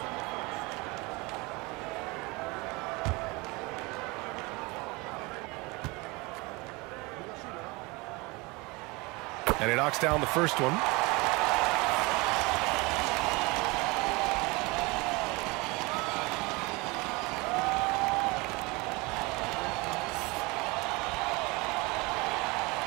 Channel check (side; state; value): left; quieter; 25.4 dB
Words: And he knocks down the first one.